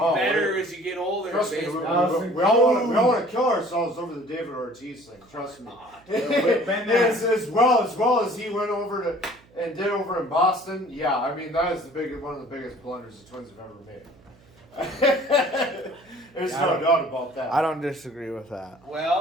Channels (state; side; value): noise; right; hum, 28 dB below the sound